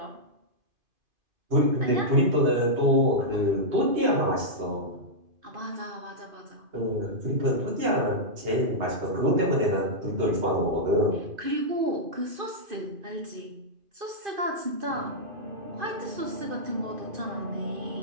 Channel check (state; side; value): late; left; 2.5 ms